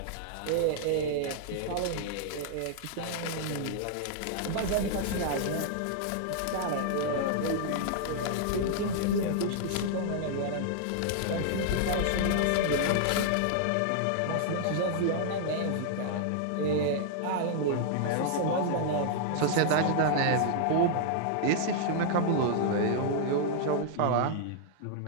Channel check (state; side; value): different; both; correlation -0.01